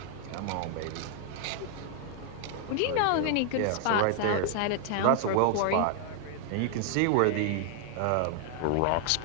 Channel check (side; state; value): both; different; correlation 0.00